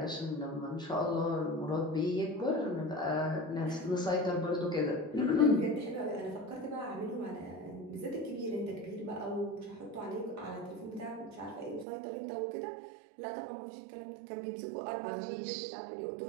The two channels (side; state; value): left; drops out; at 11.9 s